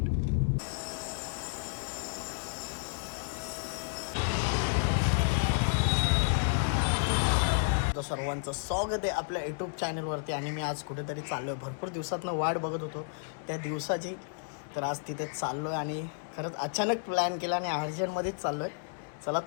सर्वांचं स्वागत आहे आपल्या यूट्यूब चॅनलवरती। आणि मी आज कुठेतरी चाललो आहे, भरपूर दिवसातनं वाट बघत होतो त्या दिवसाची। तर आज तिथे चाललो आहे आणि खरंच अचानक प्लॅन केला आणि अर्जंटमध्येच चाललो आहे। चला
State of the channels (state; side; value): silent; right; 57 dB below the other